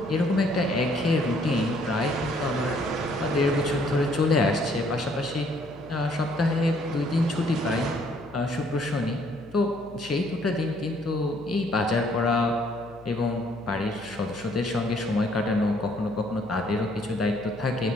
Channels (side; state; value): left; noise; hum, 22 dB below the sound